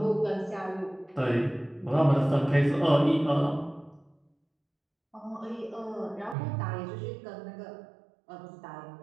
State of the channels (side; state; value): left; drops out; at 6.4 s